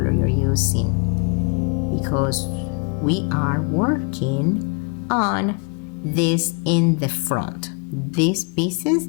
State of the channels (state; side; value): quieter; right; 33.7 dB